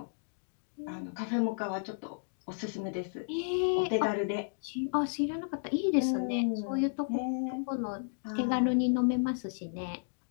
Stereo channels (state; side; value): silent; right; digital silence